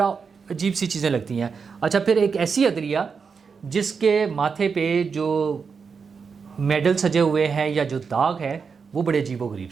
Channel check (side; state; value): left; quieter; 5.6 dB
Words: عجیب سی چیزیں لگتی ہیں۔ اچھا، پھر ایک ایسی عدلیہ جس کے ماتھے پہ جو میڈل سجے ہوئے ہیں یا جو داغ ہے وہ بڑے عجیب و غریب